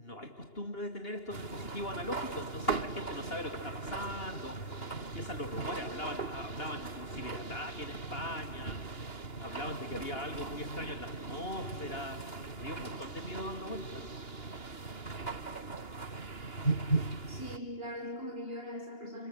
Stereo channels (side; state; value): right; late; 2.9 ms